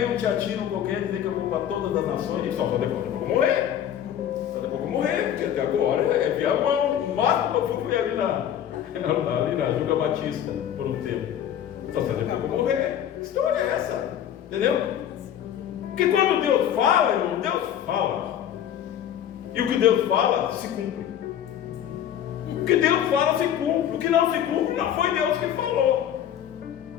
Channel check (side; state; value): right; quieter; 10.2 dB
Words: um teatino qualquer dizer que eu vou para todas as nações, e só depois eu vou morrer. Só depois eu vou morrer, porque até agora é Viamão. O máximo que eu fui ali na Juga Batista, por um tempo. Só depois eu vou morrer. Que história é essa? Entendeu? Porque quando Deus fala, irmão, Deus fala. E o que Deus fala, se cumpre. O que Deus fala, se cumpre. O que não se cumpre, não foi Deus que falou.